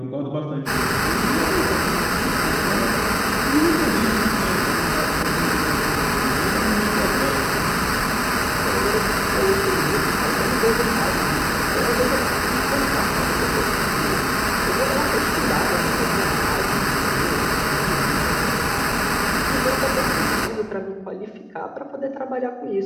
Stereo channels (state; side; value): identical; both; correlation 1.00